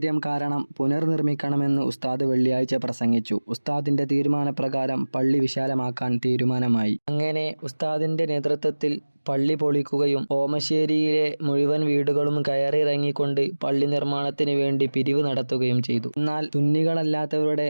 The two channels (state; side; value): inverted; both; correlation -1.00